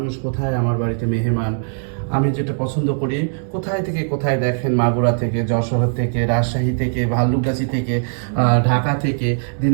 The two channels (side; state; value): left; silent; digital silence